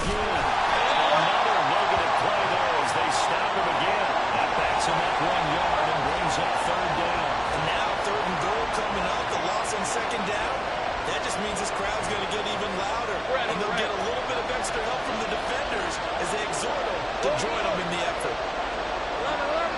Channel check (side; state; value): both; identical; correlation 1.00